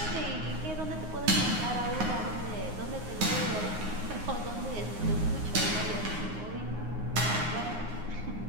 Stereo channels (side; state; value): left; late; 9.6 ms